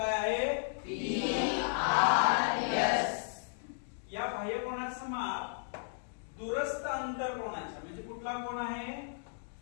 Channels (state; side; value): silent; right; digital silence